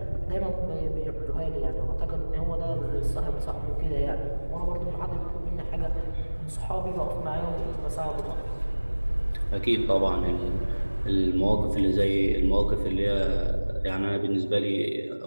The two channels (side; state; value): both; inverted; correlation -1.00